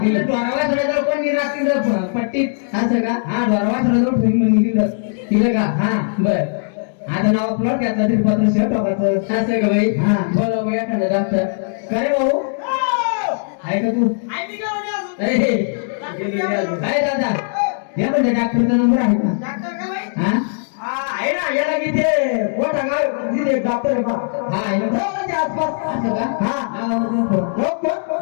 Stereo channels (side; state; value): right; silent; digital silence